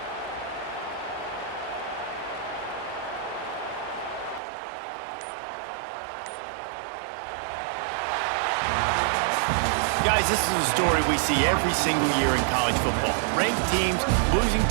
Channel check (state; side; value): drops out; left; at 4.4 s